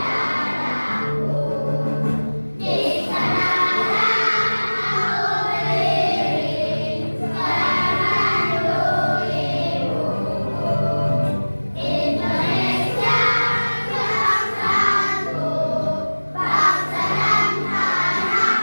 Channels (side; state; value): both; inverted; correlation -1.00